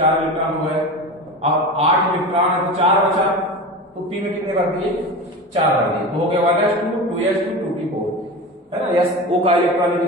इलेक्ट्रॉन हो गए। अब 8 इलेक्ट्रॉन है तो 4 बचा, तो पी में कितने भर दिए, 4 भर दिए, तो हो गया 1s2 2s2 2p4, है ना। यस ओ का इलेक्ट्रॉनिक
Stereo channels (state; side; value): normal; both; correlation 0.28